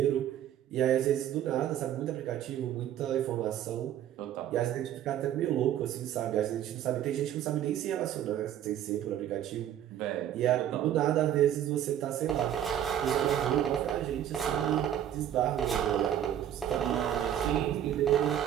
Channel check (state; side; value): quieter; left; 10.8 dB